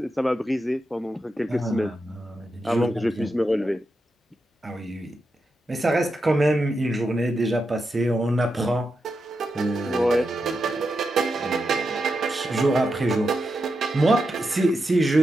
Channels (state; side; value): normal; both; correlation 0.87